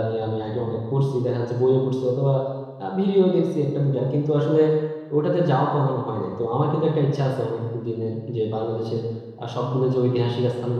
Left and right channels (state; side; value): identical; both; correlation 1.00